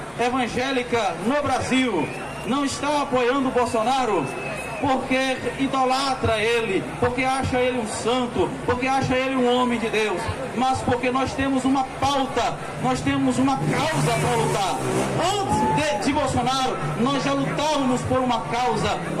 evangélica no Brasil não está apoiando o Bolsonaro porque idolatra ele, porque acha ele um santo, porque acha ele um homem de Deus, mas porque nós temos uma pauta, nós temos uma causa para lutar. Antes de Bolsonaro, nós já lutávamos por uma causa,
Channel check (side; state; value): both; identical; correlation 1.00